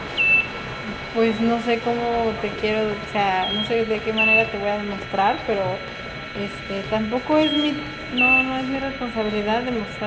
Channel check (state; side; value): identical; both; correlation 1.00